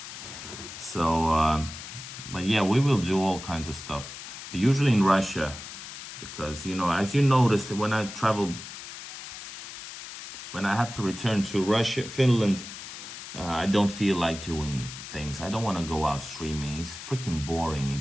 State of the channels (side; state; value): left; noise; hiss, 11 dB below the sound